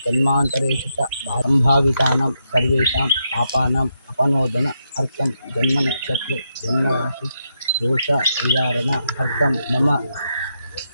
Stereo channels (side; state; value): both; inverted; correlation -0.82